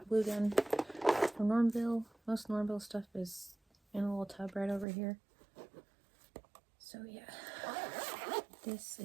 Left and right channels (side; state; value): left; drops out; at 4.9 s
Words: glue gun from Normville. Most Normville stuff is in a little tub right over here. So yeah, this